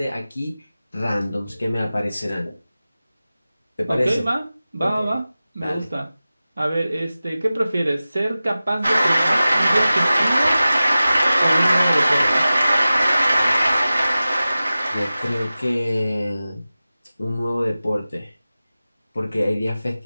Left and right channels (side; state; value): both; inverted; correlation -0.96